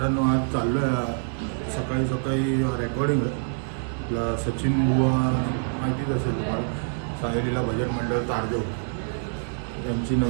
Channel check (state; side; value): silent; left; 61 dB below the other